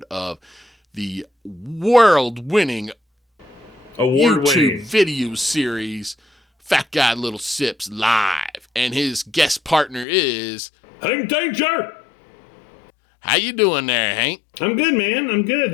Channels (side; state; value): right; drops out; at 10.1 s